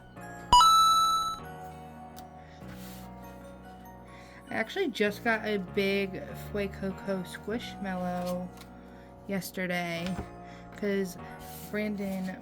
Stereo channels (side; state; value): both; identical; correlation 1.00